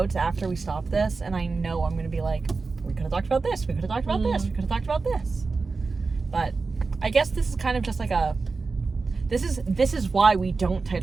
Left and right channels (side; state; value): left; quieter; 4.2 dB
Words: after we stop this, and I know I'm gonna be like, we could have talked about this, we could have talked about this, we could have talked about this. But I guess this is kind of just like a. This is why we don't